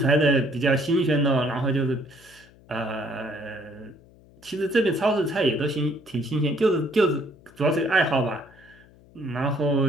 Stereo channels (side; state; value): left; noise; hum, 26 dB below the sound